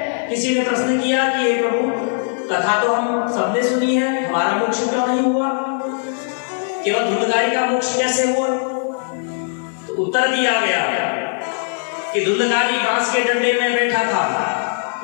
किसी ने प्रश्न किया कि हे प्रभु, कथा तो हम सबने सुनी है, हमारा मोक्ष क्यों नहीं हुआ, केवल धुंधकारी का मोक्ष कैसे हुआ? तो उत्तर दिया गया कि धुंधकारी बांस के डंडे में बैठा था,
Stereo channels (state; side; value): silent; right; digital silence